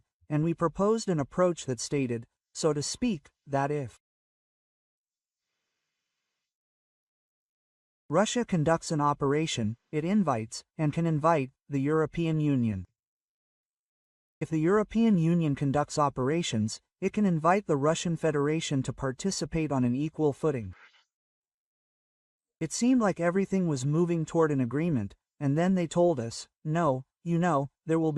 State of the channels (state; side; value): identical; both; correlation 1.00